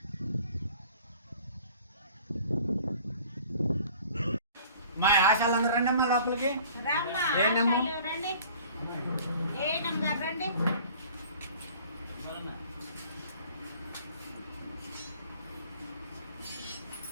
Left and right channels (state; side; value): inverted; both; correlation -0.50